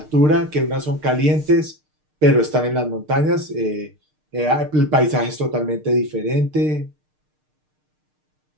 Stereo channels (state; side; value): late; left; 6.6 ms